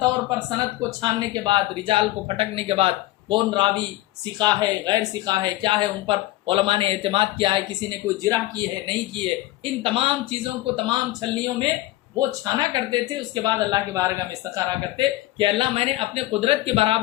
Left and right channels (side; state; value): right; quieter; 16.9 dB